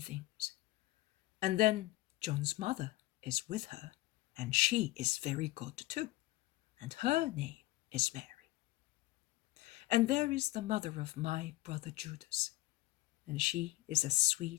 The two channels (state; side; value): quieter; right; 18.3 dB